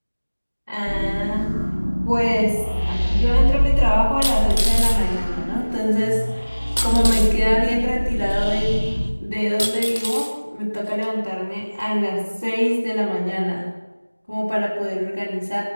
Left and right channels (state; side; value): inverted; both; correlation -1.00